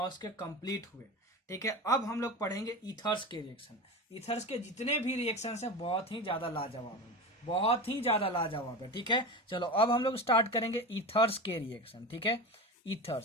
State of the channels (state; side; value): normal; both; correlation 0.27